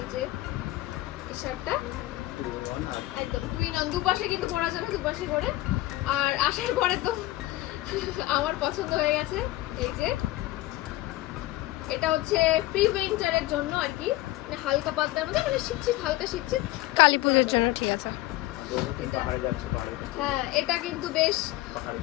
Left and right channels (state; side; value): quieter; right; 17.5 dB